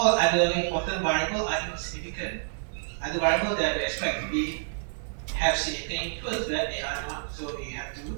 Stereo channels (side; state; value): left; silent; digital silence